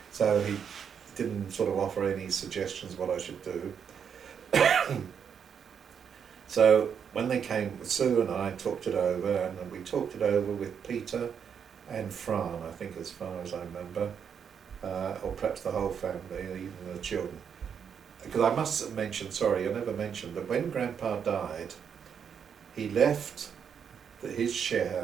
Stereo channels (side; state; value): left; quieter; 7.4 dB